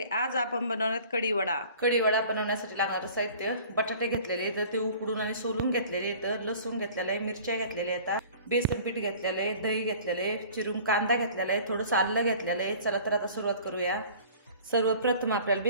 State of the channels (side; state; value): both; inverted; correlation -0.47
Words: आज आपण बनवणार कढीवडा। कढीवडा बनवण्यासाठी लागणारं साहित्य: बटाटे घेतलेले तर ते उकडून आणि सोलून घेतलेले, तर लसूण घेतलेला आहे, मिरच्या घेतलेल्या आहेत, बेसन पीठ घेतलेलं आहे, दही घेतलेलं आहे, चिरून कांदा घेतलेला आहे, थोडंसं आलं घेतलेलं आहे। चला तर आता सुरुवात करूया। सर्वप्रथम आपल्याला